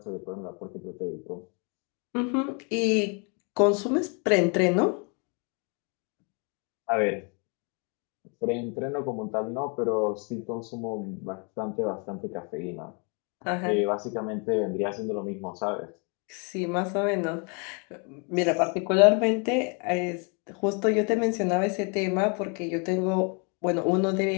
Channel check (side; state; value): right; quieter; 35.5 dB